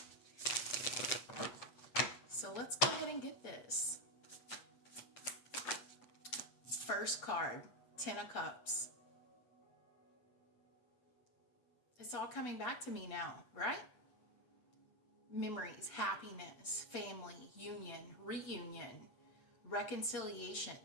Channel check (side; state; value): right; late; 8.4 ms